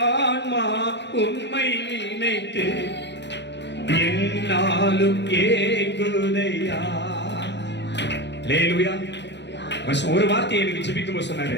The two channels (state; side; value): late; right; 0.51 ms